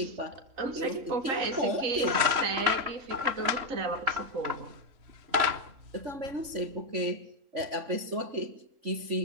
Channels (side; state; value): left; late; 3.5 ms